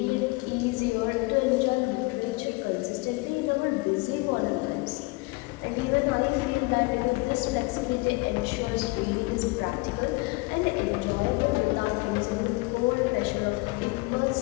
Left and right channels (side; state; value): right; quieter; 25.3 dB